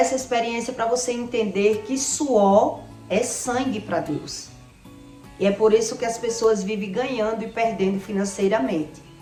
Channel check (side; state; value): both; identical; correlation 1.00